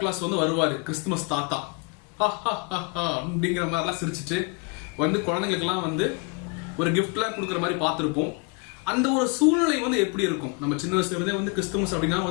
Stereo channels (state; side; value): quieter; right; 31.0 dB